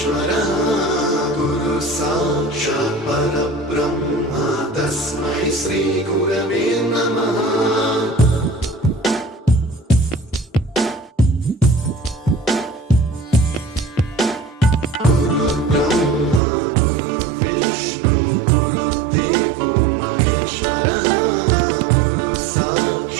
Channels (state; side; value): drops out; left; at 16.4 s